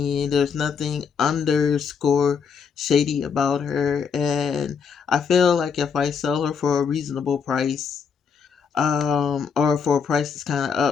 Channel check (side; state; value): right; quieter; 6.2 dB